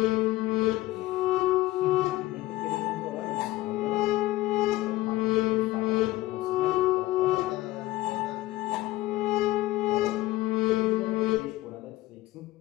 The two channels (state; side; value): quieter; right; 17.3 dB